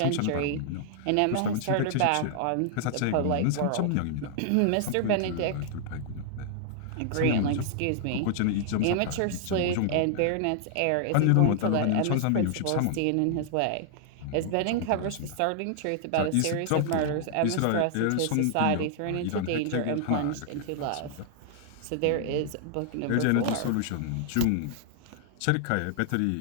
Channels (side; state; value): both; different; correlation -0.01